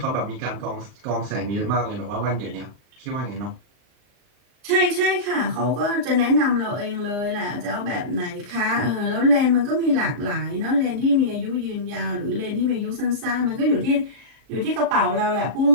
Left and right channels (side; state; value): left; late; 39 ms